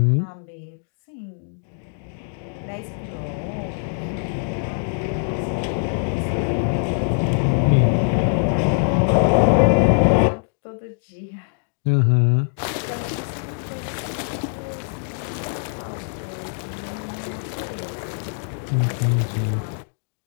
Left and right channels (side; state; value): right; silent; digital silence